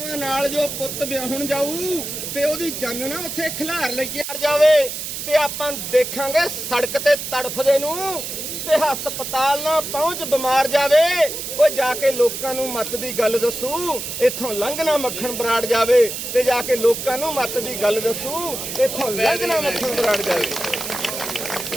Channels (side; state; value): right; noise; hiss, 6 dB below the sound